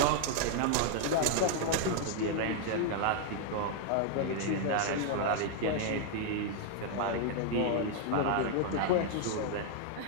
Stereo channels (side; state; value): both; different; correlation 0.00